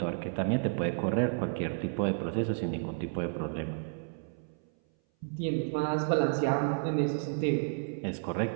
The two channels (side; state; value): left; silent; 57 dB below the other